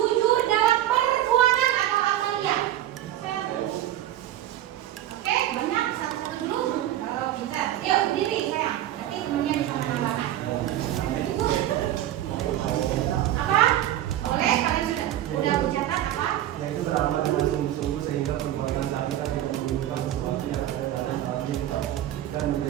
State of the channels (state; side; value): quieter; left; 12.9 dB